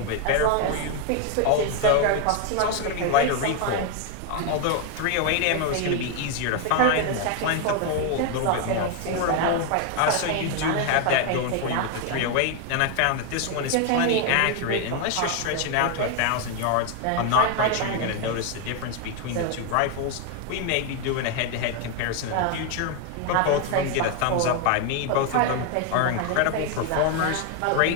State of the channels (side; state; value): both; different; correlation 0.01